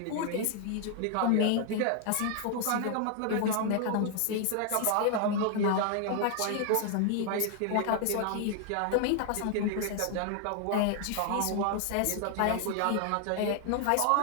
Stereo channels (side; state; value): both; different; correlation 0.00